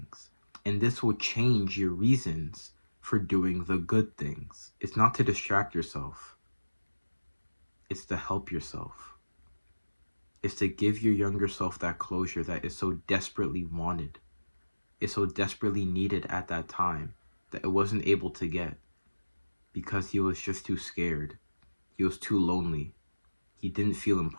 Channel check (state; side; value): inverted; both; correlation -1.00